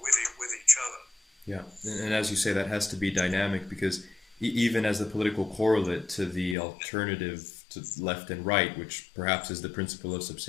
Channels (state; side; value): drops out; right; at 6.6 s